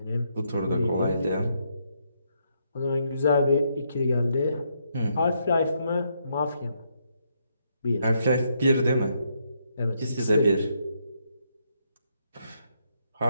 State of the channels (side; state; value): both; inverted; correlation -0.76